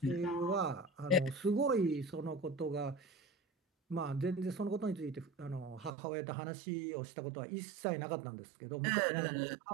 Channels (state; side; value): drops out; left; at 6.0 s